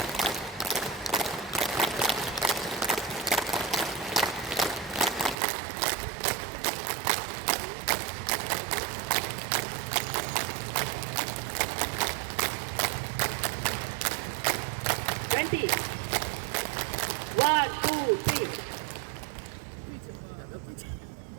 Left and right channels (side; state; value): left; drops out; at 5.4 s